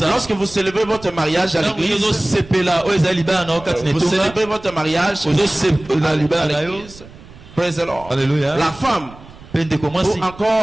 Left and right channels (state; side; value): noise; right; rumble, 20 dB below the sound